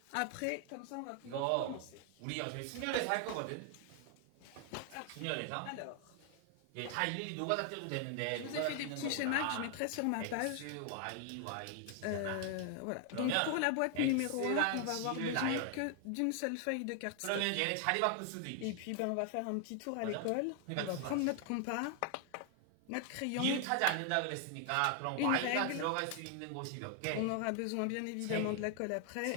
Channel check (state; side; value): different; both; correlation 0.00